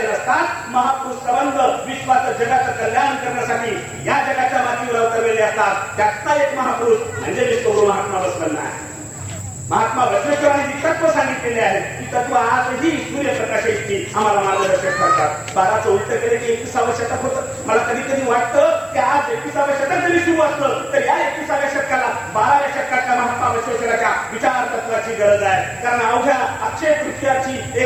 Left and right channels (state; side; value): noise; left; hiss, 29 dB below the sound